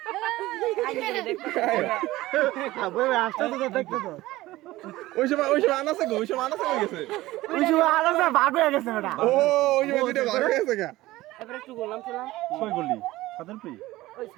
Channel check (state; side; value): quieter; left; 17.6 dB